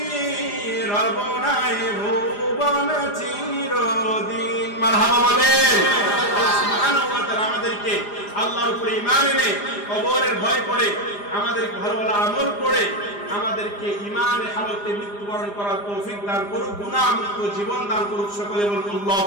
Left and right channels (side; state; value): right; late; 4.9 ms